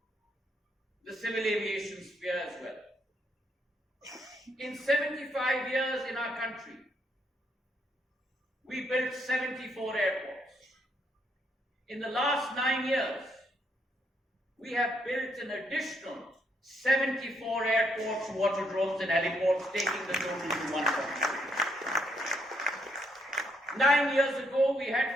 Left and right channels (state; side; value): normal; both; correlation 0.74